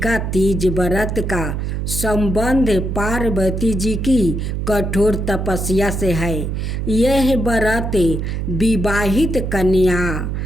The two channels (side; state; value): right; noise; hum, 2 dB below the sound